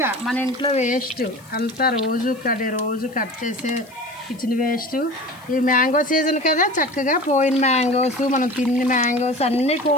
మన ఇంట్లో వేస్ట్ అంతా రోజు కట్ చేసే కిచెన్ వేస్ట్. ఈ మ్యాంగో సీజన్ కదా, చక్కగా పోయిన మ్యాంగోస్, మనం తిన్న మ్యాంగోస్ అన్నీ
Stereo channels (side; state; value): left; noise; hiss, 26 dB below the sound